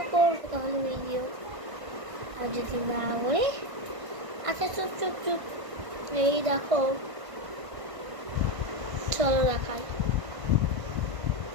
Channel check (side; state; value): left; late; 1.5 ms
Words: করবো তাহলে ভিডিও। আর যদি না করে, আচ্ছা চুপ চুপ চুপ, এই দেখো, চলো দেখাই।